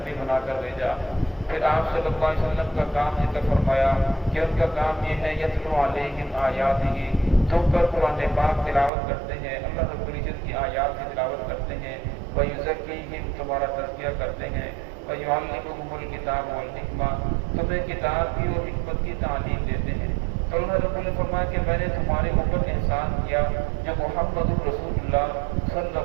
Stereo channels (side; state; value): left; drops out; at 8.9 s